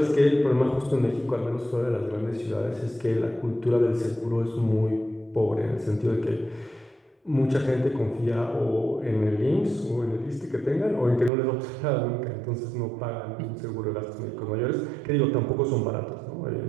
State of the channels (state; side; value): drops out; left; at 11.3 s